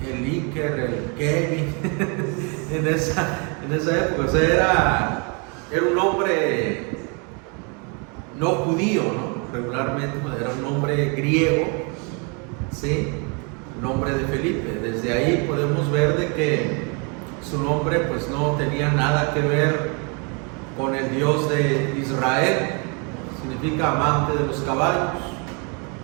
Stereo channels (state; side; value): quieter; left; 34.4 dB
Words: el Iker, el Kevin en esa época. O sea, era un nombre no judío, ¿no? Regularmente era un nombre griego, ¿sí? Nombre de Felipe. Desde ahí podemos ver de que su nombre pues no tenía nada que ver con el Dios de Israel, significa amante de los caballos.